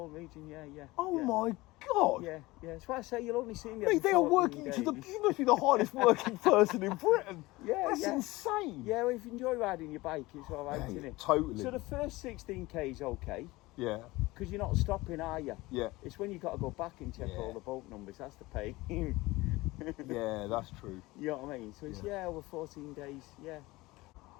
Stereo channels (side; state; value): right; quieter; 20.5 dB